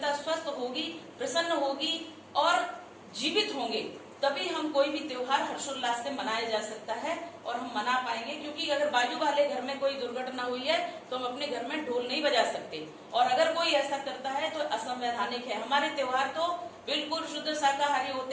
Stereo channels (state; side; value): identical; both; correlation 1.00